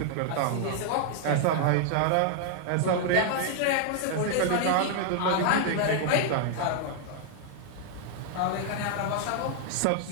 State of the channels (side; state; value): both; different; correlation 0.00